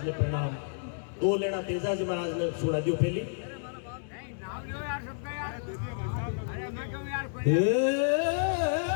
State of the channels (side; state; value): right; silent; digital silence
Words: ने प्रणाम। दो लेना तेजाजी महाराज ने सुना दियो पहली।